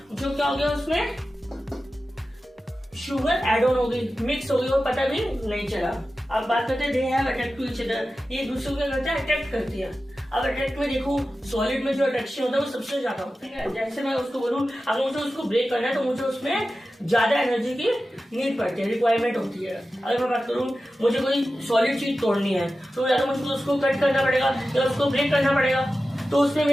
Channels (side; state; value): both; normal; correlation 0.94